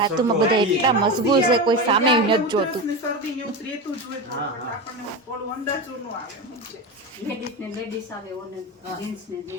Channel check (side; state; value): both; normal; correlation 0.21